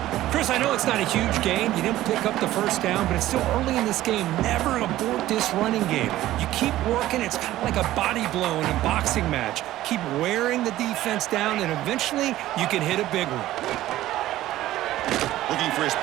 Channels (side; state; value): left; quieter; 14.9 dB